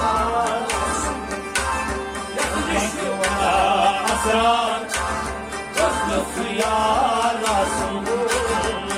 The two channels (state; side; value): identical; both; correlation 1.00